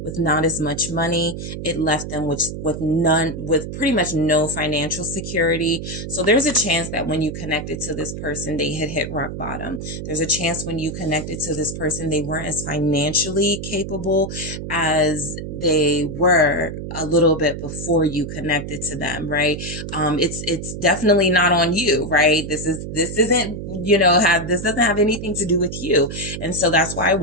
with not as much money. It left them with pretty much no financial security. So there's a chance that when you connected to this person, they had hit rock bottom. There's a chance when you connected to this person, they weren't as financially capable as they were a little bit before you connected to them, right? It's definitely not on you, right? This isn't, this doesn't have anything to do with you. And so that's why I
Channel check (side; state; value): right; noise; hum, 7 dB below the sound